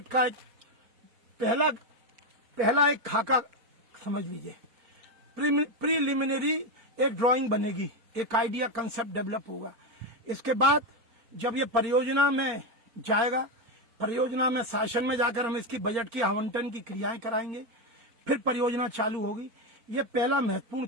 का एक पहला एक खाका समझ लीजिए, प्रीलिमिनरी एक ड्राइंग बनेगी, एक आइडिया कंसेप्ट डेवलप होगा। इसके बाद जब ये परियोजना में जाएगा, परियोजना में शासन में जाकर हम इसकी बजट की आवंटन की क्रियाएं कराएंगे, फिर परियोजना चालू होगी। ये पहला महत्वपूर्ण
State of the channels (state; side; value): late; left; 4.4 ms